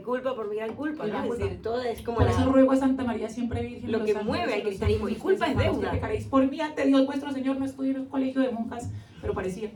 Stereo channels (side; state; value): both; identical; correlation 1.00